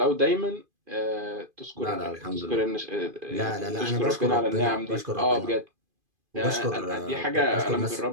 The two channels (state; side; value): late; left; 2.5 ms